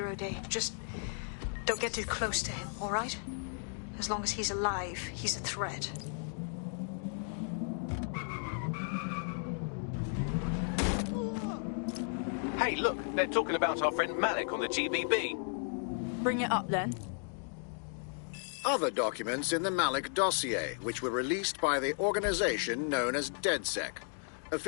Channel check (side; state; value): right; silent; 55 dB below the other